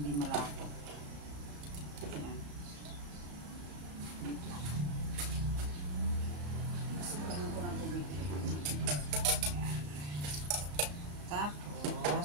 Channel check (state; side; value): late; left; 34 ms